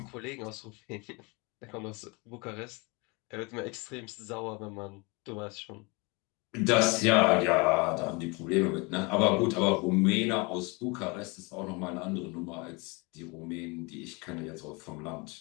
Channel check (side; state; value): right; quieter; 28.4 dB